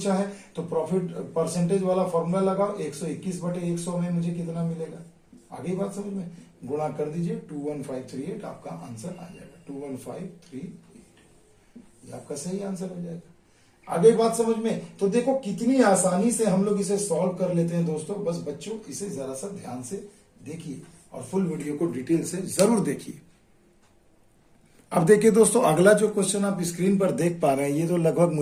है, तो प्रॉफिट परसेंटेज वाला फॉर्मूला लगाओ, 121/100 में मुझे कितना मिलेगा। आगे बात समझ में, गुणा कर दीजिए, 21538 आपका आंसर आ जाएगा, 21538, ये आपका सही आंसर हो जाएगा। आगे बात समझ में। तो देखो कितनी आसानी से हम लोग इसे सॉल्व कर लेते हैं दोस्तों। बस बच्चों इसे जरा सा ध्यान से देखिए, और फुल वीडियो को डिटेल से जरूर देखिए। अब देखिए दोस्तों, अगला जो क्वेश्चन आप स्क्रीन पर देख पा रहे हैं, ये तो लगभग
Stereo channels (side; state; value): both; identical; correlation 1.00